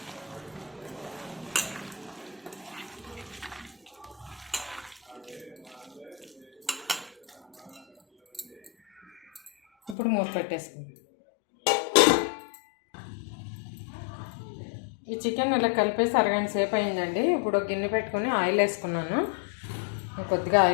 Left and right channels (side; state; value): right; drops out; at 10.0 s